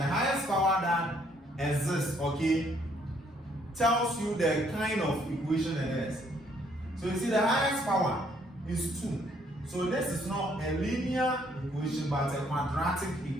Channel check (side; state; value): both; normal; correlation 0.67